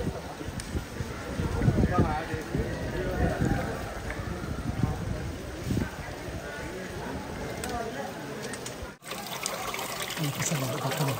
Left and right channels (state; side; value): identical; both; correlation 1.00